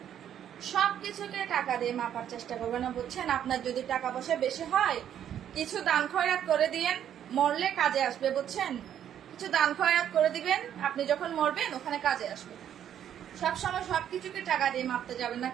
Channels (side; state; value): left; quieter; 9.9 dB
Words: সবকিছুকে টাকা দিয়ে মাপার চেষ্টা করবেন না, বুঝছেন? আপনার যদি টাকা পয়সা বেশি হয় কিছু দান খয়রাত করে দিয়েন, মরলে কাজে আসবে, বুঝছেন? কিছু দান খয়রাত করে দিবেন, আপনি যখন মরবেন ওখানে কাজে আসবে। সবসময় সবকিছুকে টাকা দিয়ে মাপতে যাবেন না,